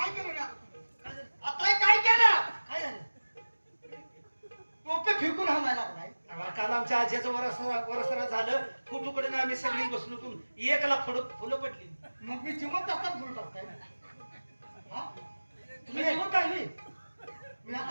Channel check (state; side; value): inverted; both; correlation -1.00